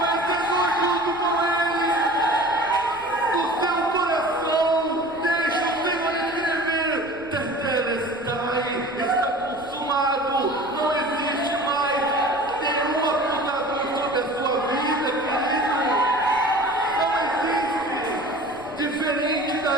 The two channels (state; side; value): noise; left; rumble, 23 dB below the sound